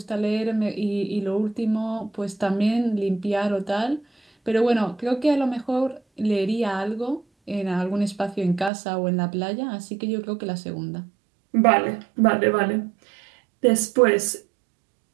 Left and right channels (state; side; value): drops out; left; at 8.7 s